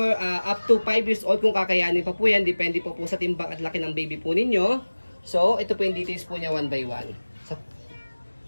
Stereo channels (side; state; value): both; inverted; correlation -1.00